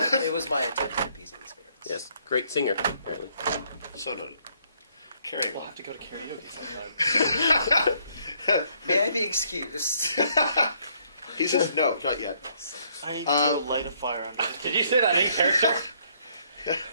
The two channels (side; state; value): both; inverted; correlation -0.68